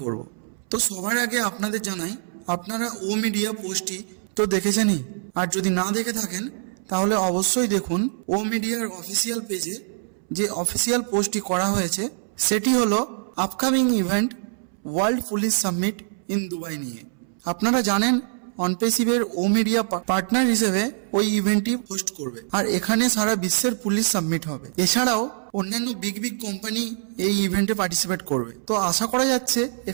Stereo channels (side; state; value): left; silent; 62 dB below the other